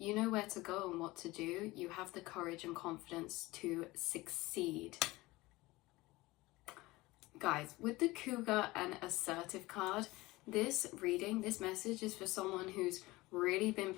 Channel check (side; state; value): right; quieter; 20.3 dB